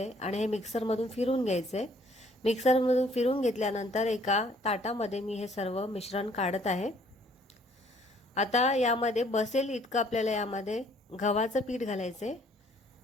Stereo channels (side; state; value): both; normal; correlation 0.61